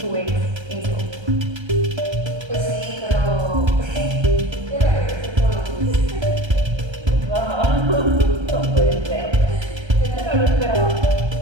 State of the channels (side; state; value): left; late; 1.3 ms